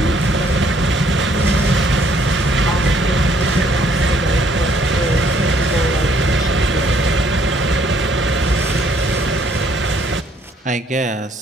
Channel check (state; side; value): normal; both; correlation 0.65